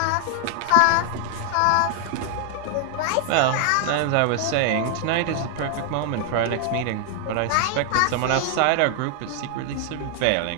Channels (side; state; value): both; different; correlation 0.00